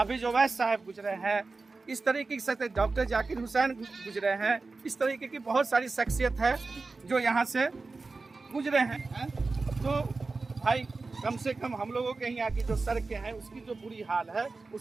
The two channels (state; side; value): quieter; left; 3.8 dB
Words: ओवैस साहब गुजरे हैं, इस तरीके से डॉक्टर जाकिर हुसैन गुजरे हैं। इस तरीके की बहुत सारी शख्सियत है जो यहाँ से गुजरे हैं। तो भाई कम से कम हम लोगों के यहाँ की जो सड़कें हैं उसकी जो बुरी हाल है